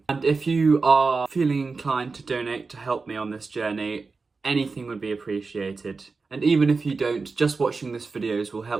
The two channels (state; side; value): quieter; left; 4.3 dB